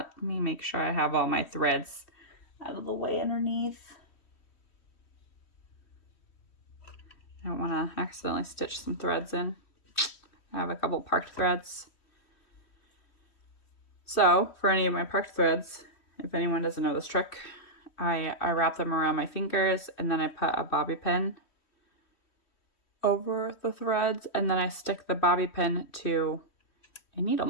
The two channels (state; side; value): late; right; 3.1 ms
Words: Let me make sure I have all my threads out of the way underneath. I don't want to accidentally stitch some threads in. I have a couple parked threads. So for any of my parked threads, if anyone doesn't know this trick, I wrap them around my fingers and then I put a bobby pin over the threads and then I stick the bobby pin to a needle